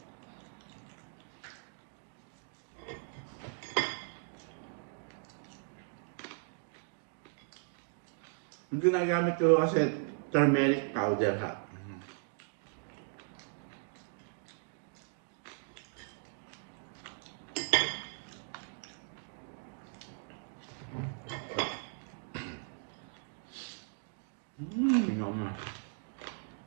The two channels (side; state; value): left; silent; 53 dB below the other